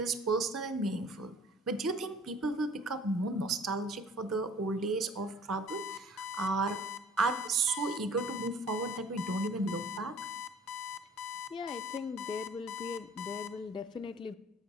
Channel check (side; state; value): both; normal; correlation 0.51